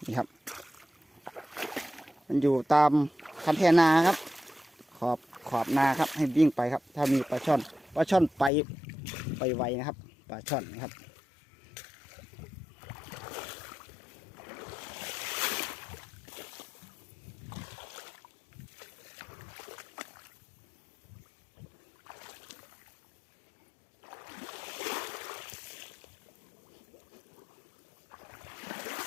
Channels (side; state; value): right; drops out; at 8.5 s